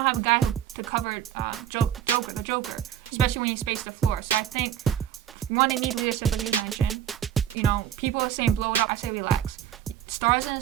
have a guy to cover the Joker, especially when you space the floor. So I think, one, they need leadership, like you mentioned. You know, people are saying blow it up. I say relax. Stars in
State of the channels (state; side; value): quieter; left; 10.1 dB